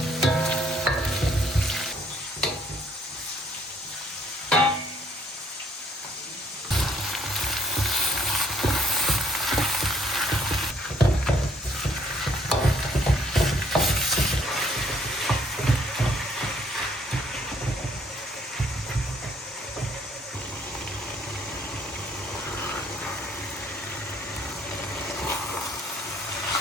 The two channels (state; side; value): normal; both; correlation 0.63